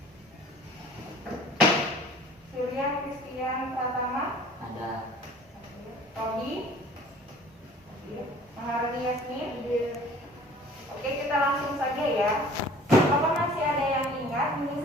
Surya Kristian Pratama. Ada. Robi. Maharani Yasmin. Oke, kita langsung saja ya. Apakah masih ada yang ingat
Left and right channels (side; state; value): both; normal; correlation 0.49